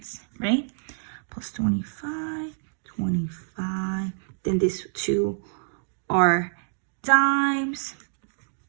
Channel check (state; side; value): silent; left; digital silence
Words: right? Plus 25, 25. Then these 2 are dimes.